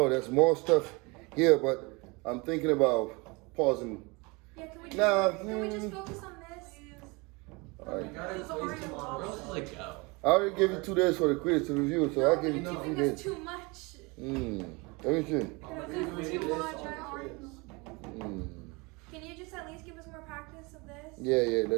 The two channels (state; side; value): quieter; left; 27.1 dB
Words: there's more stuff here, but I'm thinking about pausing. Yeah, can we just, Nah, can we just focus on this? All right. You gotta Those waste are them your on Where else roll. does it go? I already gave you 2 days for the quiz to review, so No, I'll give you you're 2 giving us days. too much. Let me see. You're giving us too much. I don't- Mm. Can you just at least give us more practice of this? Yeah,